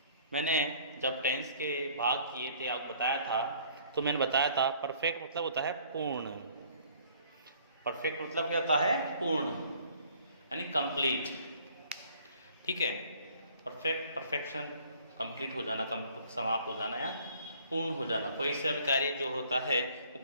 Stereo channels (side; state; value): both; inverted; correlation -0.57